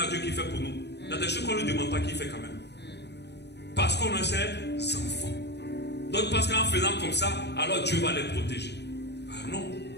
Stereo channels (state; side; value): late; right; 0.49 ms